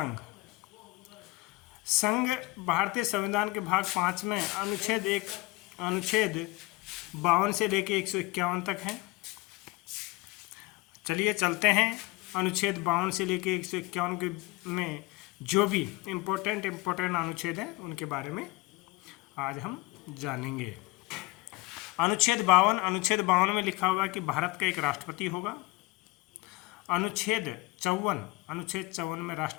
संघ भारतीय संविधान के भाग 5 में अनुच्छेद 52 से लेके 151 तक है। चलिए चलते हैं। अनुच्छेद 52 से लेके 151 के में जो भी इम्पोर्टेंट अनुच्छेद हैं उनके बारे में आज हम जानेंगे। अनुच्छेद 52 में लिखा हुआ है कि भारत का एक राष्ट्रपति होगा। अनुच्छेद 54 में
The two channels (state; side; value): quieter; right; 22.7 dB